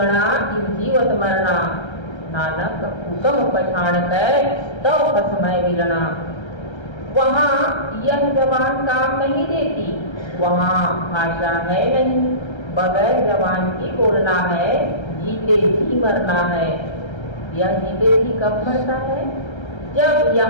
इन जीवत मरना, नानक हुक्म पछाड़ कर तो कसमय मिलना। वहाँ यह जबान काम नहीं देती, वहाँ भाषा है नहीं, बगैर जबान की बोलना है, जीते जी मरना है। यह जीते जी कब मरता है? जब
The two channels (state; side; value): late; right; 1.3 ms